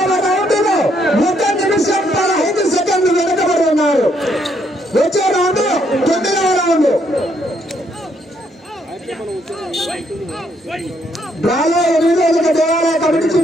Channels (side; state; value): both; normal; correlation 0.72